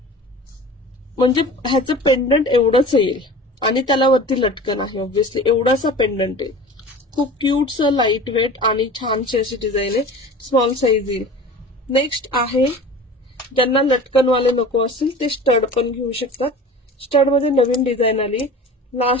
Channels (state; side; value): normal; both; correlation 0.38